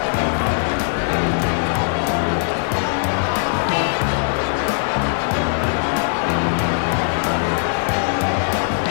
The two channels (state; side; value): silent; right; digital silence